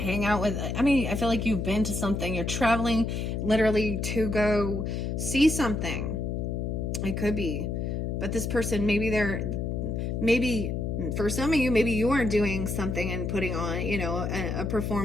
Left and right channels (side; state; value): left; noise; hum, 2 dB below the sound